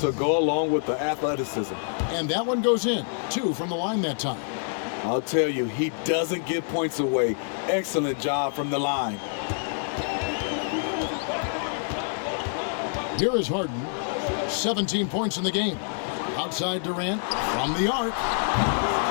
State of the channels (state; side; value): silent; right; 61 dB below the other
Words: to go along with the athleticism. And that one goes in. 2 from the line that time. I'll tell you, he doesn't give points away. Excellent job from the line. Here is Harden. 17 points in the game. Outside Durant from the arc.